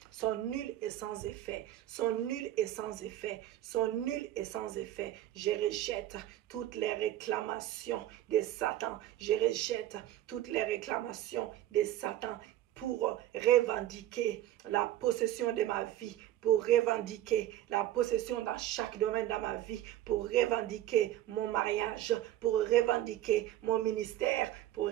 sont nulles et sans effet, sont nulles et sans effet, sont nulles et sans effet. Je rejette toutes les réclamations de Satan. Je rejette toutes les réclamations de Satan pour revendiquer la possession de ma vie, pour revendiquer la possession dans chaque domaine de ma vie, pour revendiquer mon mariage, pour revendiquer mon ministère, pour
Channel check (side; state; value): left; quieter; 13.4 dB